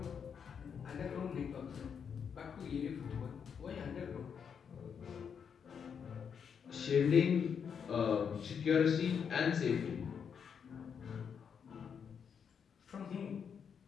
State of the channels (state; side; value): quieter; right; 7.1 dB